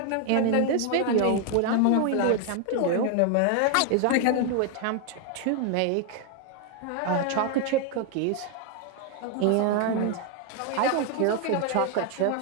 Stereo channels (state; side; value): different; both; correlation 0.01